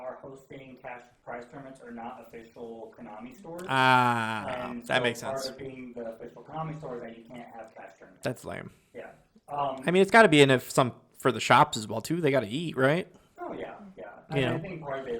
are hosting cash prize tournaments are not official Konami stores. Ah, And that so makes part sense. of being the official Konami store is that you can't have cash tournaments. That's lame. Yeah. I mean, it's got to be in if some for the shops as well too. They got to eat, right? Oh yeah. You And know. I think part of it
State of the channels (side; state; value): both; identical; correlation 1.00